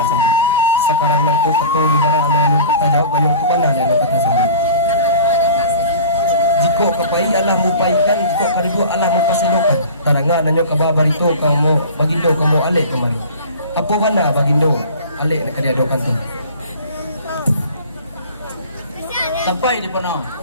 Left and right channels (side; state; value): both; inverted; correlation -0.40